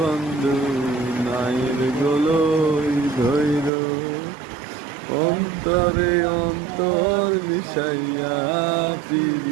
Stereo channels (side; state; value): left; drops out; at 3.7 s